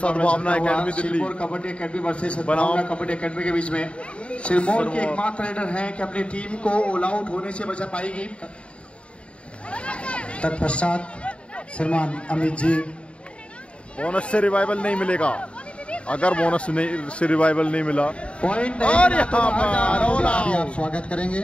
academy Delhi, Sirmaur kabaddi academy versus सद्भावना कबड्डी एकेडमी के बीच में सिरमौर के एकमात्र रेडर हैं कि अपनी टीम को ऑल आउट होने से बचा पाएगी। तत्पश्चात श्रीमान अमित जी, बोनस से रिवाइवल नहीं मिलेगा। अगर बोनस से रिवाइवल नहीं मिला पॉइंट और यहाँ पर आप स्वागत करेंगे।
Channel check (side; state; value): right; late; 0.059 ms